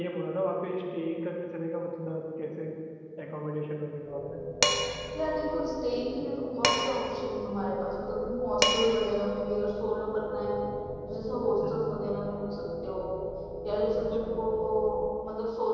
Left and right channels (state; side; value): identical; both; correlation 1.00